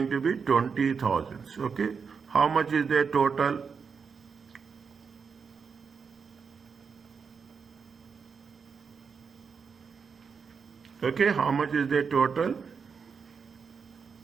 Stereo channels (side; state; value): left; quieter; 5.8 dB